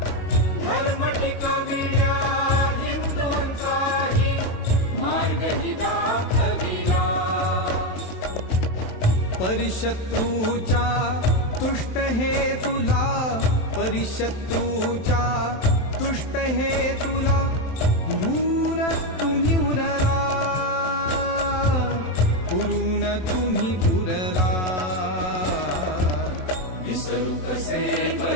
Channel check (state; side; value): late; right; 27 ms